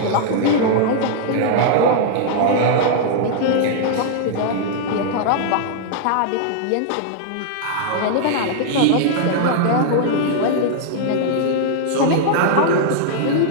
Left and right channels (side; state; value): both; different; correlation -0.01